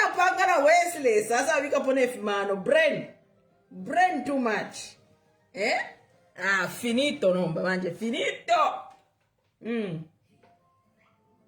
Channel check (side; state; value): both; identical; correlation 1.00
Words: pangana Wesley. Sasa wika pone fimano. Brain too much. Finito nomba manje. Finito.